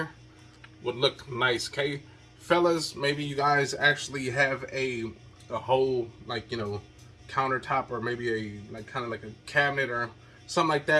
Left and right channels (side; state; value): both; identical; correlation 1.00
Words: would look nice, okay? Fellas, maybe you guys actually have a whole, like, you know, countertop or maybe a, like, kind of like a cabinet or something like